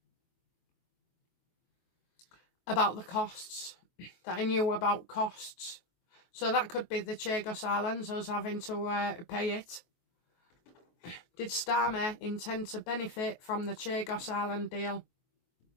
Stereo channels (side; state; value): right; late; 23 ms